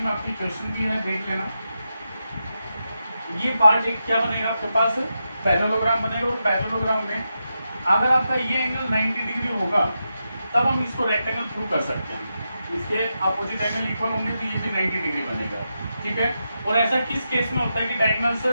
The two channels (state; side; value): inverted; both; correlation -0.87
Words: आपकी क्वेश्चन भी है, देख लेना। ये पार्ट एक क्या बनेगा आपके पास, पैरेललोग्राम बनेगा। और पैरेललोग्राम में अगर आपका ये एंगल 90 डिग्री होगा तब हम इसको रेक्टेंगल प्रूव कर सकते हैं। इसके अपोजिट एंगल इक्वल होंगे तो ये भी 90 डिग्री बनेगा, ठीक है। और ऐसा किस केस में होता है कि diagonals